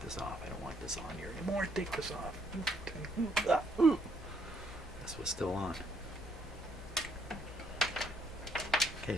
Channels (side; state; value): both; normal; correlation 0.70